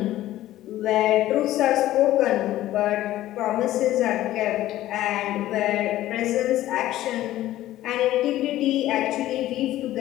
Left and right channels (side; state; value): right; quieter; 14.5 dB